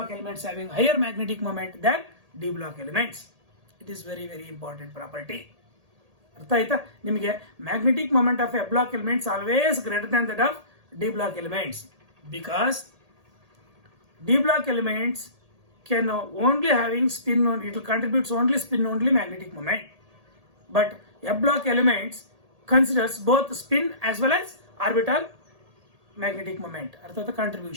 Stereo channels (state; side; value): late; left; 1.8 ms